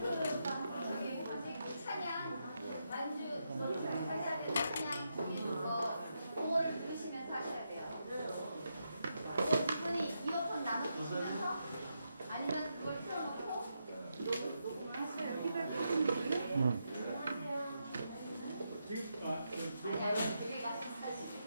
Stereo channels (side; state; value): both; inverted; correlation -0.83